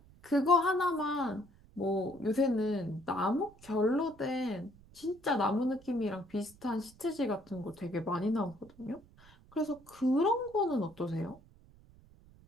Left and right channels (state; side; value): noise; right; rumble, 25 dB below the sound